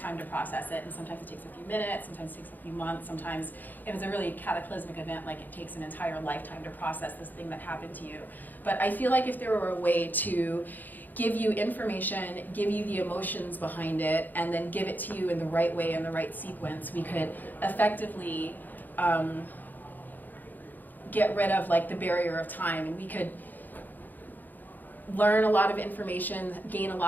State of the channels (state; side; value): late; right; 0.086 ms